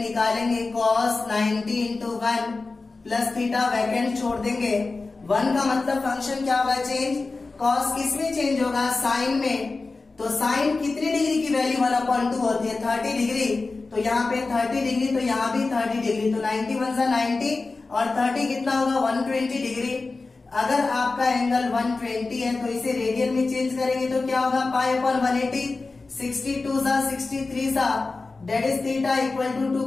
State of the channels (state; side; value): quieter; right; 3.7 dB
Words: निकालेंगे, cos 90 into 1 plus theta vacant छोड़ देंगे। 1 का मतलब फंक्शन क्या होगा, चेंज। cos किसमें चेंज होगा, साइन में। तो साइन कितनी डिग्री की वैल्यू 1/2 होती है, 30 डिग्री। तो यहाँ पे 30 डिग्री, तो यहाँ भी 30 डिग्री। तो 91 से 90 और 30 कितना होगा, 120 डिग्री। अगर आपका एंगल 120 है तो इसे रेडियन में चेंज करेंगे तो क्या होगा, पाई अपॉन 180, 62 सा 63 सा that is theta equal to 2